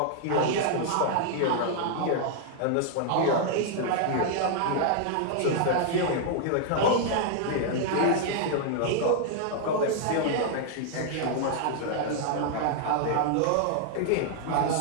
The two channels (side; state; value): both; different; correlation -0.01